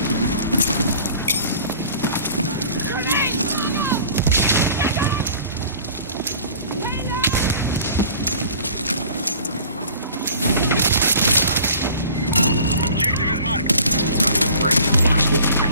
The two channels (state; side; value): inverted; both; correlation -0.46